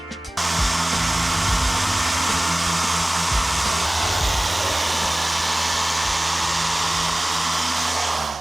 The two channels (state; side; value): normal; both; correlation 0.98